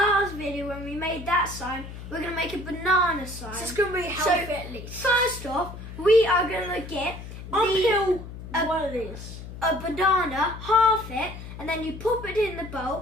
video when we made that sign, we're going to make a banana sign. So it's going to be healthy at least. First off, we are going to get uphill one of these. A banana, half it, and then you pop it in the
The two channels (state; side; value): noise; left; hum, 12 dB below the sound